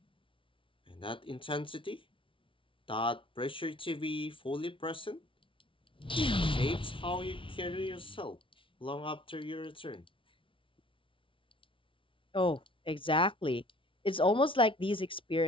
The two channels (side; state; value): right; late; 0.25 ms